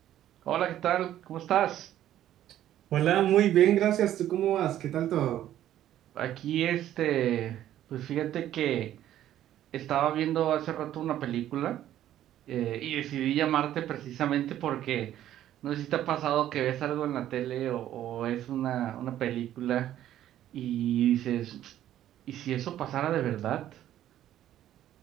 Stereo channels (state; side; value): quieter; left; 12.2 dB